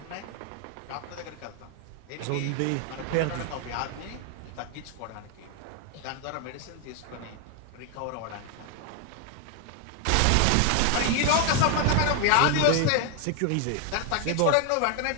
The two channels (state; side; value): different; both; correlation 0.01